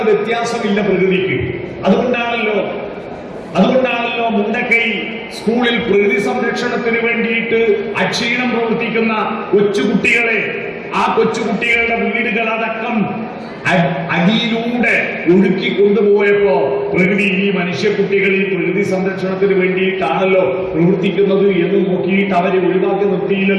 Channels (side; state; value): both; identical; correlation 1.00